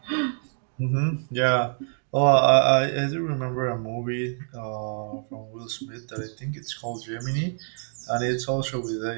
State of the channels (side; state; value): left; silent; 61 dB below the other